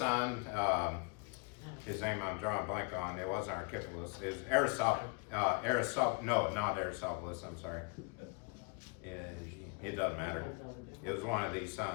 his name I'm drawing a blank on, it wasn't Archippus, it was not Aristobulus, I'm sorry. It doesn't matter. It was one of these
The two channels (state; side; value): quieter; right; 34.4 dB